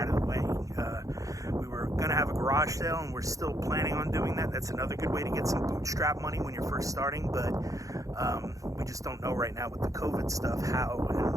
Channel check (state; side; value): late; left; 0.16 ms